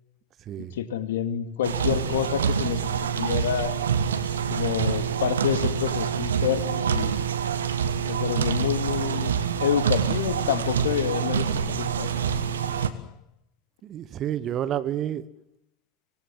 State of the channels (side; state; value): both; inverted; correlation -0.44